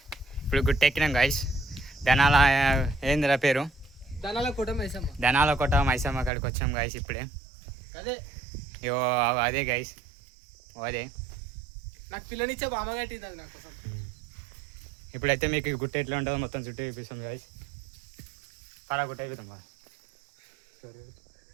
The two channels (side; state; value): left; drops out; at 6.3 s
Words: ఇప్పుడు గుట్టెక్కినాం గాయస్. ధనాల ఏందిరా పేరు, ధనాల కోట మైసమ్మ. ధనాల కోట మైసమ్మ కాడికి వచ్చాం గాయస్ ఇప్పుడే. అదే ఇగో అదే గాయస్, అదే నాకు పిల్లనిచ్చే బామ్మ కట్టింది అది నా కోసం. ఇప్పుడైతే మీకు గుట్ట ఎట్లా ఉంటుందో మొత్తం చుట్టూ చూపిస్తాం గాయస్. పరా గుట్ట అయిపోతాం బా.